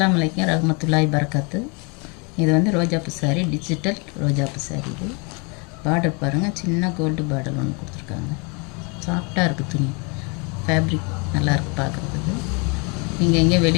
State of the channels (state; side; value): quieter; right; 32.4 dB